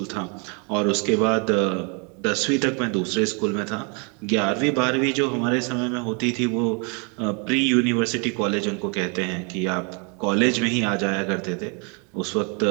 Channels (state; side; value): quieter; left; 35.0 dB